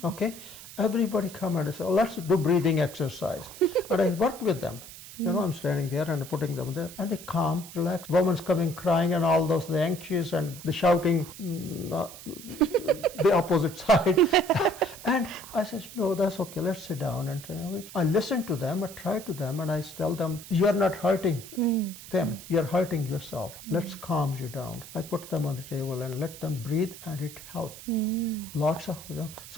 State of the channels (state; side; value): noise; right; hiss, 15 dB below the sound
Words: Okay. Everybody come and say, oh, let's do breathing exercise. And I work with them. You know, I'm standing there and putting them there, and they calm, relax. Woman's coming crying and all those, the anxious and the shouting, the opposite side. And I said, no, that's okay, let's sit down. And I listen to them, I try to them, and I tell them, you're not hurting them, you're hurting yourself. Let's calm you down. I put them on the table and let them breathe, and it helped. Lots of,